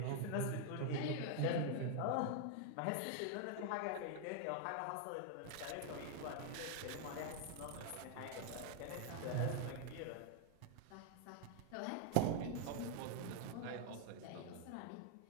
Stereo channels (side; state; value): both; different; correlation 0.00